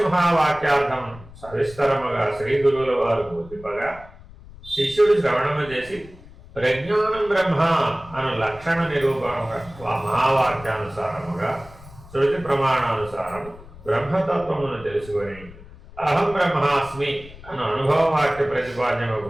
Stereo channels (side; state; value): left; noise; rumble, 19 dB below the sound